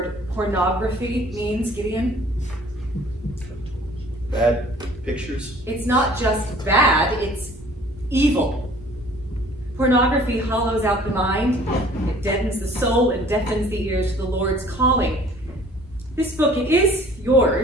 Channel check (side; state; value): both; normal; correlation 0.53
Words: pornography means, Gideon? Bad pictures? It's not just bad, it's evil. Pornography hollows out the mind, it deadens the soul and deafens the ears to the Lord's calling. This book, it is